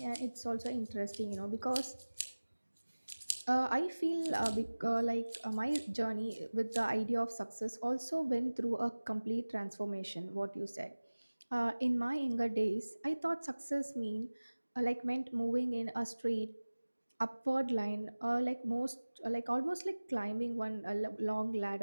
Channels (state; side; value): inverted; both; correlation -1.00